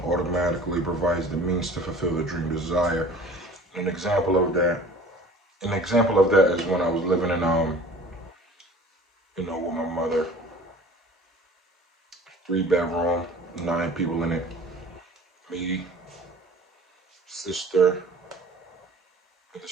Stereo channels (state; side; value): normal; both; correlation 0.46